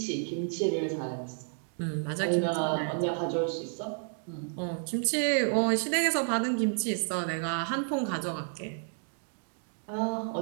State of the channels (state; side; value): silent; left; 57 dB below the other